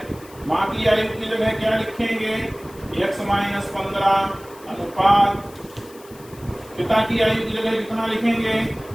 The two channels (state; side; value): noise; left; hiss, 23 dB below the sound